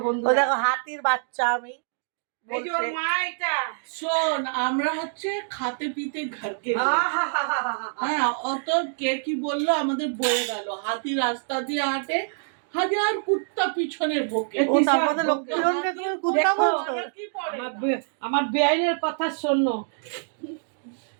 বন্ধু। ওই দেখো হাতির বাচ্চা আমি এই যে ওর বলছে। মা এটা। শোন, আমরা হচ্ছে খাতে পিতে ঘরকে হ্যাঁ, অত কে কি বললো আমাদের বয়ে গেল। হাতি রাস্তা দিয়ে হাঁটে, হাজার কুত্তা পিছনে ভোকে। ও তারপরে লক্ষ্মীরঞ্জনকে তুমি কুত্তা দেখো, বলছো? কি পড়ে আমার বেআইনের কথা শোনো।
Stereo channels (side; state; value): left; silent; digital silence